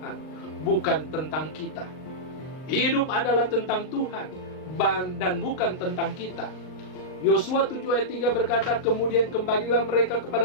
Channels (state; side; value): late; right; 39 ms